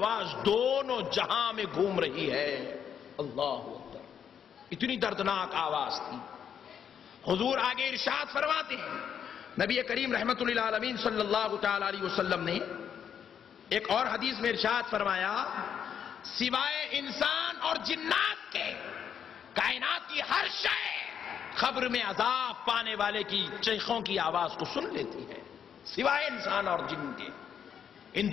دونوں جہاں میں گھوم رہی ہے. اللہ اکبر. اتنی دردناک آواز تھی. حضور آگے ارشاد فرماتے ہیں، نبی کریم رحمت اللہ علیہ صلی اللہ تعالی علیہ وسلم نے ایک اور حدیث میں ارشاد فرمایا سوائے انسان اور جنات کے کائنات کی ہر شے خبر میں عذاب پانے والے کی چیخوں کی آواز کو سن لیتی ہے، سوائے انسان اور جن کے. ان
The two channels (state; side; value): quieter; right; 8.3 dB